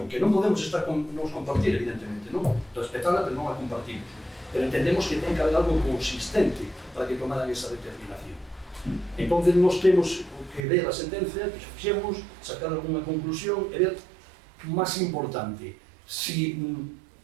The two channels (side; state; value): left; drops out; at 10.6 s